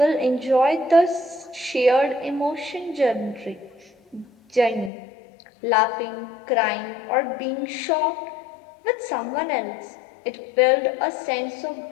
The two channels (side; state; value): right; drops out; at 4.9 s